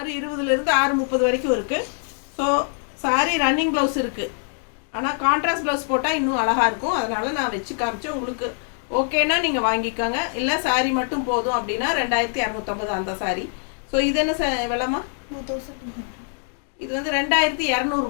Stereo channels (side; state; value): right; silent; 56 dB below the other